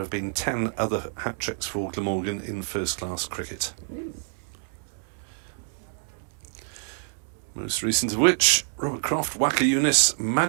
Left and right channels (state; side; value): silent; left; digital silence